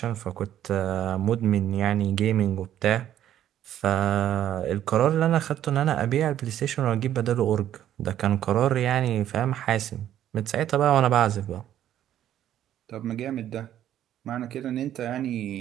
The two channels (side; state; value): left; quieter; 11.4 dB